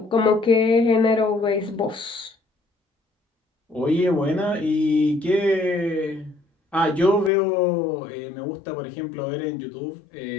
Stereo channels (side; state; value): right; drops out; at 7.3 s